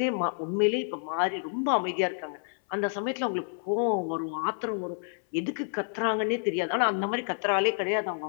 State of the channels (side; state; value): right; silent; 59 dB below the other